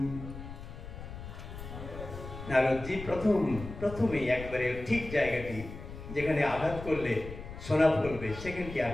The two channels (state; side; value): noise; left; rumble, 11 dB below the sound